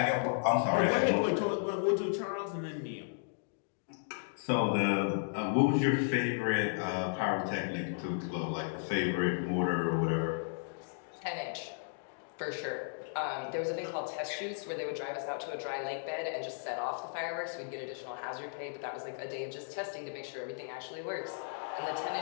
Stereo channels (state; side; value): silent; right; digital silence